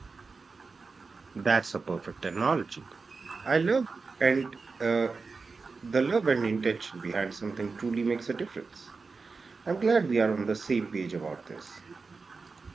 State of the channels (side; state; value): left; quieter; 4.4 dB